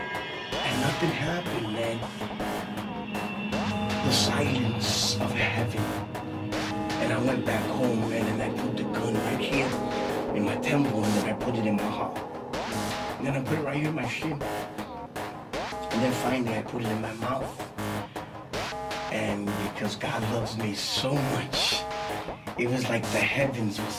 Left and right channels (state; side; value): identical; both; correlation 1.00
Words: nothing happened, man. The silence of heaven. And I went back home, man, and I put the gun right here in my temple, and then I put it in my heart. And then I put it right here in my shin. And then finally I put it in my mouth. And because God loves me so much, it was like the heavens were